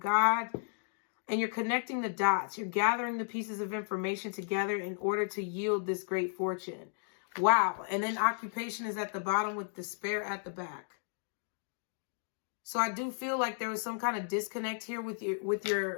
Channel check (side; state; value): right; silent; digital silence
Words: and you're connecting the dots. You're gathering the pieces of information together in order to yield this great fortune. Wow. And then occupation is at the bottom with despair at the back. So I do feel like there was some kind of disconnect here with